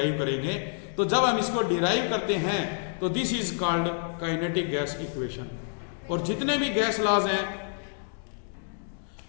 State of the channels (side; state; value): right; silent; digital silence